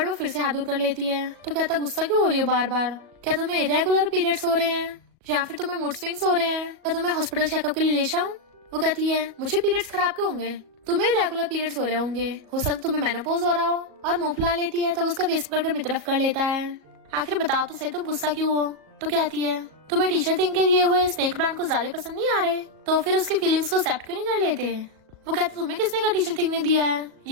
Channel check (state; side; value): late; left; 37 ms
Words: वो फिर से हाथ दूर कर लेती है। तो कहता गुस्सा क्यों हो रही हो बार बार, क्या तुम्हें इरेगुलर पीरियड्स हो रहे हैं या फिर तुम्हें मूड स्विंग्स हो रहे हैं, क्या तुम्हें हॉस्पिटल चेकअप के लिए ले जाऊं। वो कहती है मुझे पीरियड्स खराब क्यों होंगे, तुम्हें रेगुलर पीरियड्स हो रहे होंगे, हो सकता तुम्हें मेनोपॉज हो रहा हो। और मुंह फुला लेती है तो उसका फेस पकड़कर अपनी तरफ कर लेता है। आखिर बताओ तो सही तुम गुस्सा क्यों हो। तो कहती है तुम्हें टीचर थिंग के दिए हुए स्नेक प्लांट को ज्यादा पसंद नहीं आ रहे, तो फिर उसकी फीलिंग्स को एक्सेप्ट क्यों नहीं कर लेते। वो कहते तुम्हें किसने कहा टीचर थिंग ने दिया है,